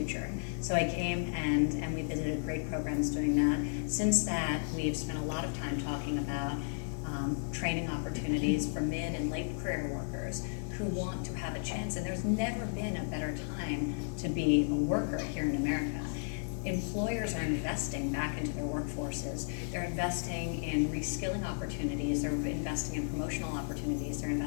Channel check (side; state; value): right; silent; digital silence